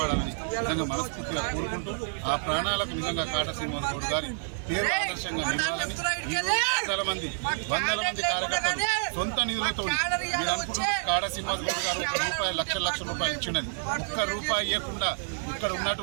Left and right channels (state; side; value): silent; left; digital silence